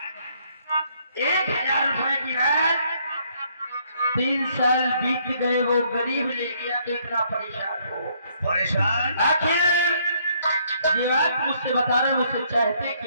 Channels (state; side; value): inverted; both; correlation -0.68